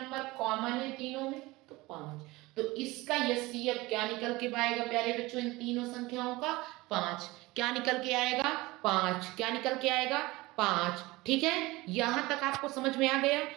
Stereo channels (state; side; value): quieter; left; 20.8 dB